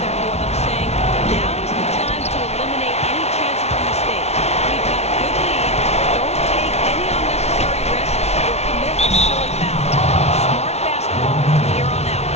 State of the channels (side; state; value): right; late; 0.31 ms